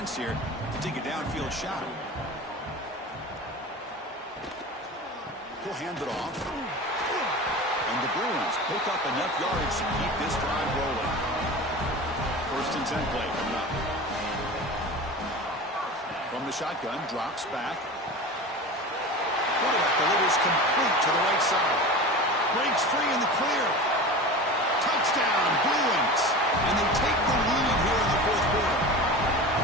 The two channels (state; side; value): normal; both; correlation 0.32